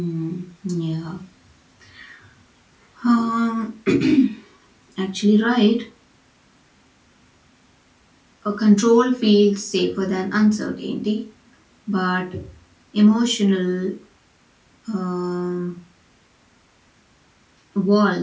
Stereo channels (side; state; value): both; identical; correlation 1.00